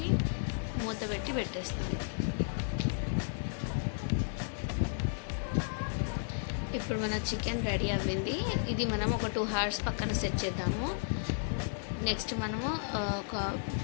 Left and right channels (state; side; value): silent; right; digital silence